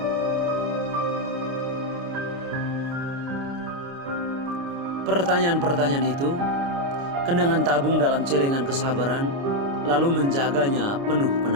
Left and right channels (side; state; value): left; late; 29 ms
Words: Pertanyaan-pertanyaan itu, kenangan tabung dalam celengan kesabaran, lalu menjaganya penuh